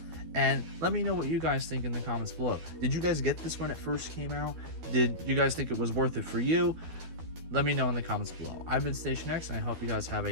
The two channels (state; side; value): late; left; 12 ms